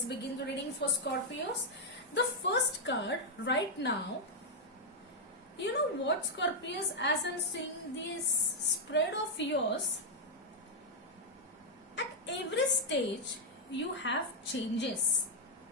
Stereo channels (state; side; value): normal; both; correlation -0.02